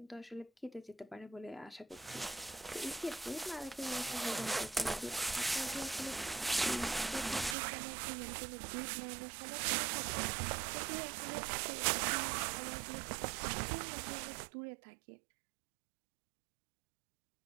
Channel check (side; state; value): left; drops out; at 7.6 s